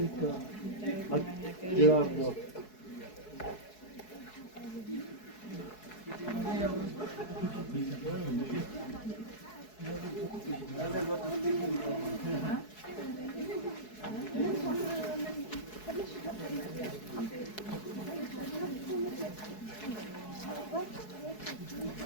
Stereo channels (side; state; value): right; late; 4.7 ms